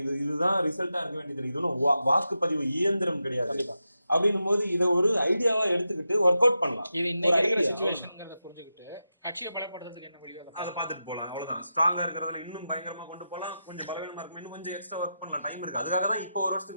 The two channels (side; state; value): both; inverted; correlation -0.89